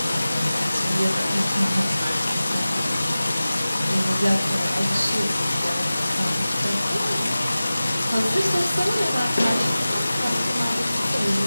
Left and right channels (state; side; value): inverted; both; correlation -0.96